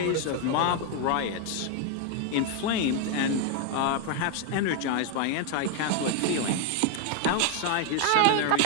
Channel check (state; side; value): different; both; correlation 0.01